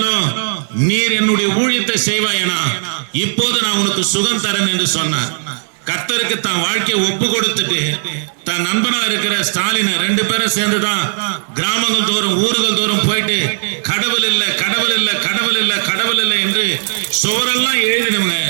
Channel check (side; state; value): left; silent; digital silence